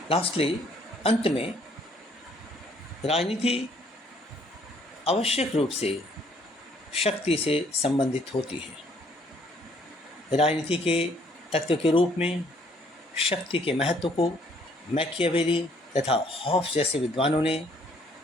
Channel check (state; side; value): normal; both; correlation 0.63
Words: लास्टली, अंत में राजनीति आवश्यक रूप से शक्ति से संबंधित होती है। राजनीति के तत्व के रूप में शक्ति के महत्व को मैकियावेली तथा हॉब्स जैसे विद्वानों ने